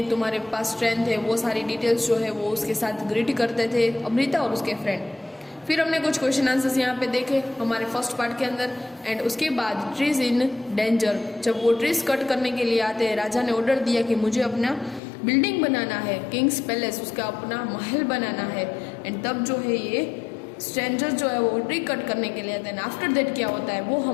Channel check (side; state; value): right; drops out; at 15.0 s